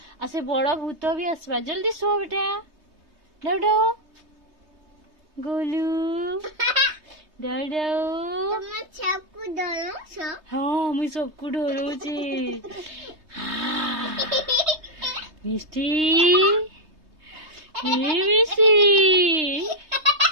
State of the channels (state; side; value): late; left; 3.2 ms